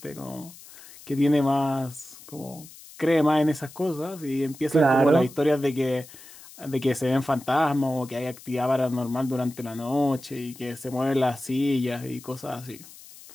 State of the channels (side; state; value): left; noise; hiss, 19 dB below the sound